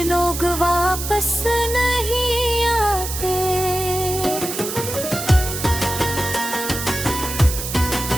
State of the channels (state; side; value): noise; right; hiss, 6 dB below the sound